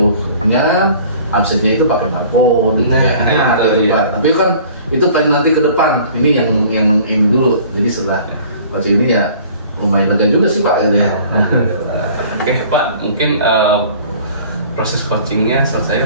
absennya itu pakai barcode tapi kan itu pengen nanti ke depan. Ini yang ini dulu. Jadi setelah baca ini ya lumayan lega juga sih Pak gitu ya. Oke Pak, mungkin proses coachingnya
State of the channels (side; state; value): both; inverted; correlation -0.49